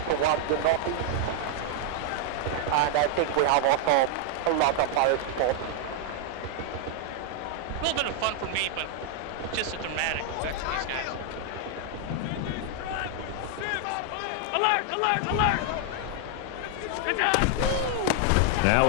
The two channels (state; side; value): different; both; correlation 0.00